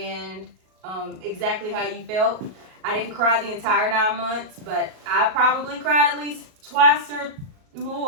exactly how you felt. I didn't cry the entire 9 months, but I probably cried at least twice or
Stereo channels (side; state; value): left; late; 38 ms